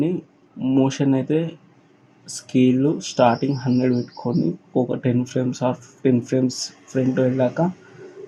మోషన్ అయితే స్కేల్ స్టార్టింగ్ 100 పెట్టుకొని ఒక 10 ఫ్రేమ్స్ ఆర్ 15 ఫ్రేమ్స్ ఫ్రంట్ వెళ్ళాక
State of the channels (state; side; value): identical; both; correlation 1.00